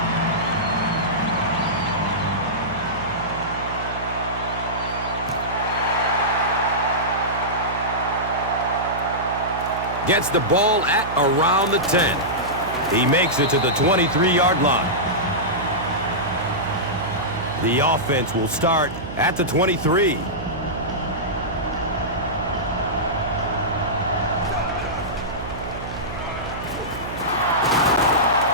Gets the ball at around the 10. He makes it to the 23-yard line. The offense will start at the 23.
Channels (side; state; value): right; noise; hum, 10 dB below the sound